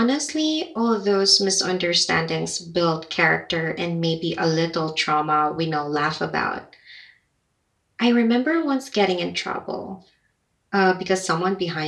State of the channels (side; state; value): both; identical; correlation 1.00